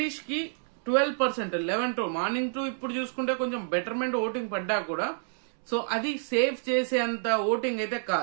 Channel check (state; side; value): silent; left; digital silence